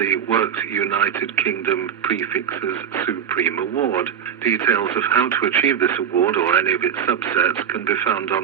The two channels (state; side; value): quieter; left; 8.5 dB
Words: Worked United Kingdom Prefixes Supreme Award. Details of how to achieve this award or any of its subsets can be found